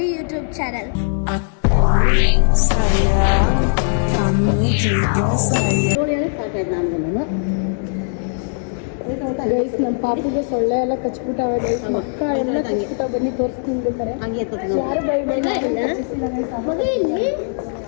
YouTube channel. Guys ನಮ್ಮ ಪಾಪುಗೆ ಸೊಳ್ಳೆ ಎಲ್ಲ ಕಚ್ಬಿಟ್ಟಾವೆ ಗೈಸ್ ಮಕ್ಕ ಎಲ್ಲ ಕಚ್ಬಿಟ್ಟಾವ ಬನ್ನಿ ತೋರಿಸ್ತೀನಿ ಬೇಕಾರೆ ಯಾರು ಬೈ ಬೈ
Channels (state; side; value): silent; right; digital silence